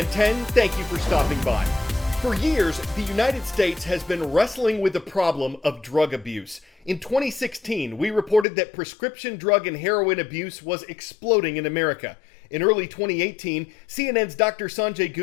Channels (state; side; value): drops out; right; at 8.5 s